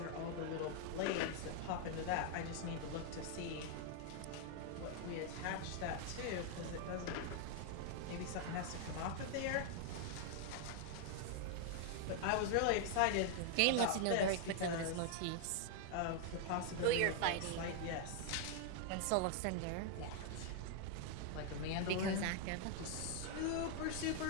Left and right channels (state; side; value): different; both; correlation 0.00